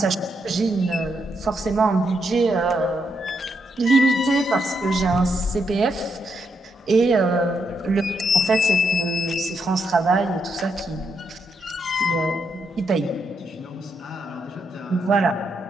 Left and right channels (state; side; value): normal; both; correlation 0.79